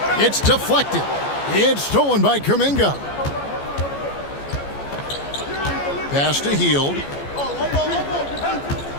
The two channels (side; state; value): right; late; 14 ms